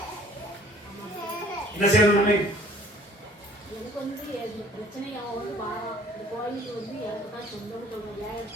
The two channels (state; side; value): normal; both; correlation 0.54